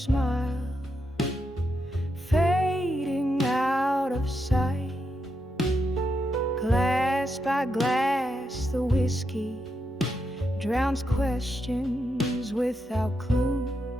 fading out of sight. Glass by glass, the whiskey drowns questions without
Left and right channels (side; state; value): both; normal; correlation 0.83